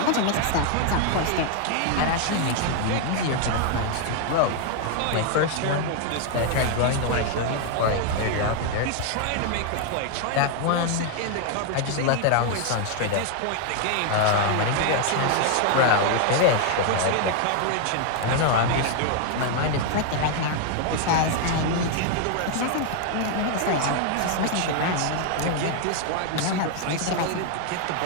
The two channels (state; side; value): different; both; correlation 0.00